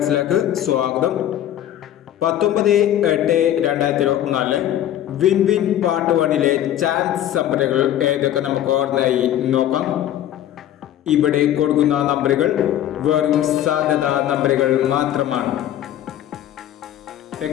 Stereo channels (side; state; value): right; quieter; 11.8 dB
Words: സ്വാഗതം. 19/8/2024 win win part 1-ലെ chance നമ്പറുകൾ ഏതൊക്കെ നമുക്ക് ഓർമ്മയായി നോക്കാം. ഇവിടെ കൊടുക്കുന്ന നമ്പറുകൾ വെറും സാധ്യതാ നമ്പറുകൾ മാത്രമാണ്.